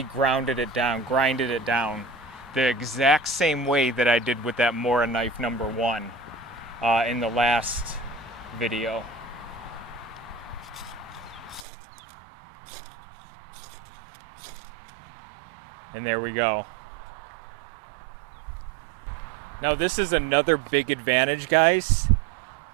grinded it down the exact same way that I did with that Mora knife number 1 in the last video. And there we go. Now this is another big advantage, guys,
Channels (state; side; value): drops out; left; at 11.7 s